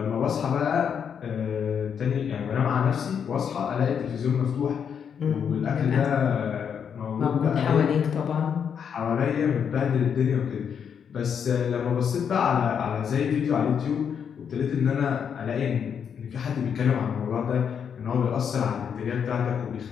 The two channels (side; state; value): right; quieter; 7.5 dB